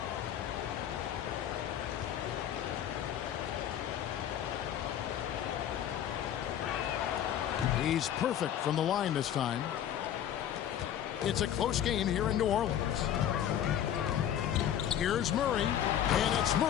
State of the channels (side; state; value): right; quieter; 10.4 dB